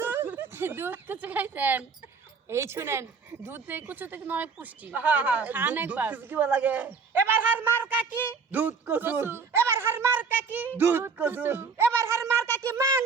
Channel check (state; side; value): quieter; left; 5.3 dB